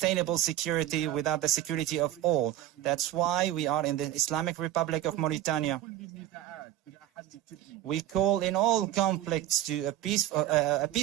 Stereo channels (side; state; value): left; quieter; 13.0 dB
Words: security without the security of all. That's why we are in the Islamic Republic of Mauritania. We call in all conflicts to a